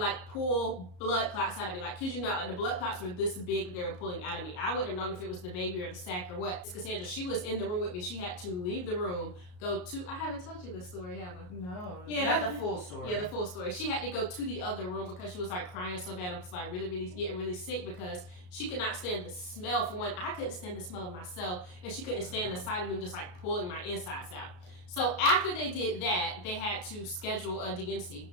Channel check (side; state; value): right; late; 34 ms